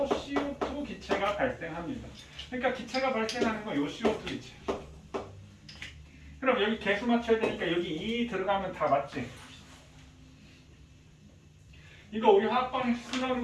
CO2 기체가 발생합니다. 그러니까 기체가 발생하는 건 요 CO2 기체. 그럼 여기 개수 맞춰야 되니까 여기 2 들어가면 다 맞지? 이거 우리 화학방식 쓰는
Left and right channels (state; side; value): identical; both; correlation 1.00